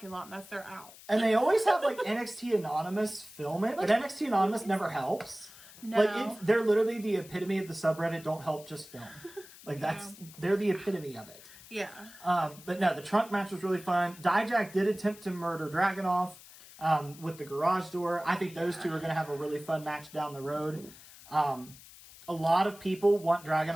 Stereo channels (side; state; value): left; noise; hiss, 19 dB below the sound